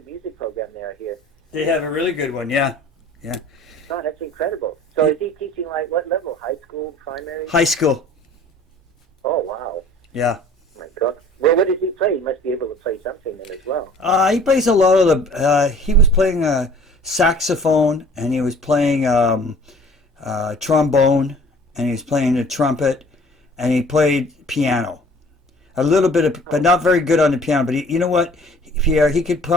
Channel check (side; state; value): both; normal; correlation 0.50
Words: music program there here. They have a really good one. Yeah. Oh, that's incredible. So is he teaching like what level? High school, primary? High school. Oh wow. Yeah. Oh my God. Well, what does he play? He must be able to play something then as well. He plays a lot of the. He was playing saxophone, and he was playing trombone, and he was playing the trumpet, and he played piano. A little bit of, but not very good on the piano. But you know what, Pierre? He could